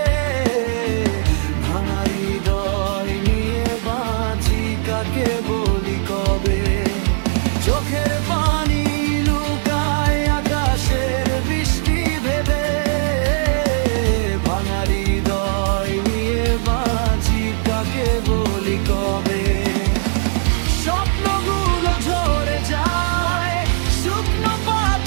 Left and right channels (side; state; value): left; silent; digital silence